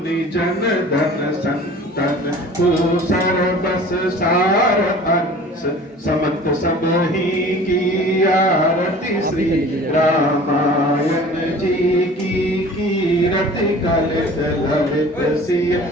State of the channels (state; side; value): normal; both; correlation 0.44